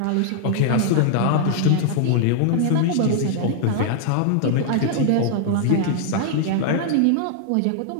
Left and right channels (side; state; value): both; different; correlation -0.01